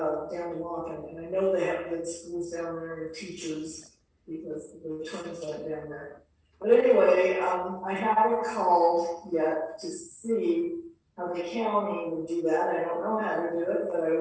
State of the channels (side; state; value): both; identical; correlation 1.00